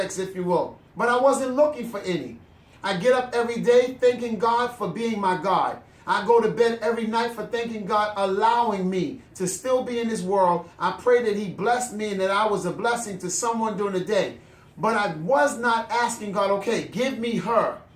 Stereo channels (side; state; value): both; identical; correlation 1.00